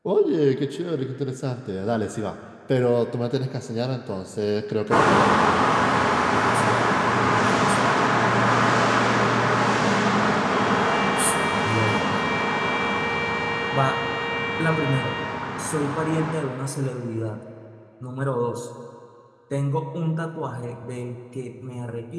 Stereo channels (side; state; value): both; identical; correlation 1.00